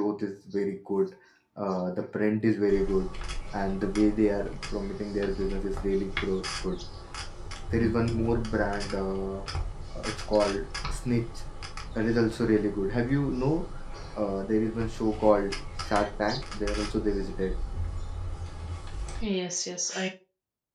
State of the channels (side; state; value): both; identical; correlation 1.00